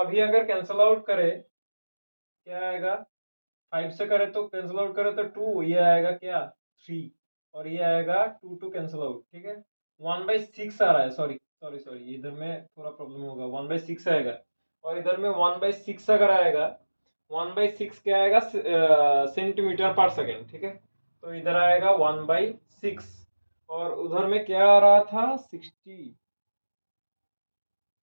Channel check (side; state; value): both; inverted; correlation -1.00